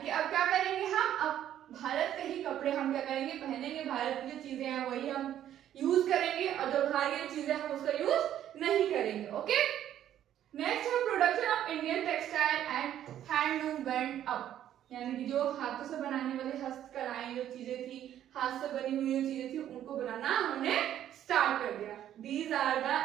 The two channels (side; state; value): left; quieter; 11.2 dB